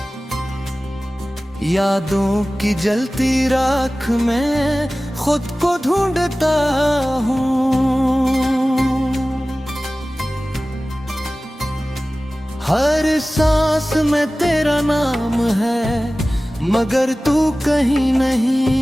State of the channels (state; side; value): normal; both; correlation 0.97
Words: यादों की जलती राख में खुद को ढूंढता हूँ। हर सांस में तेरा नाम है मगर तू कहीं